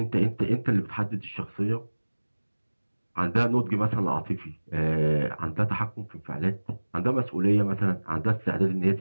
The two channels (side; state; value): both; inverted; correlation -1.00